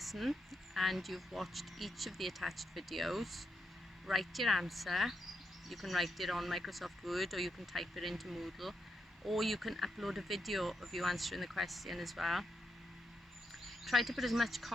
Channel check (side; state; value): both; normal; correlation 0.83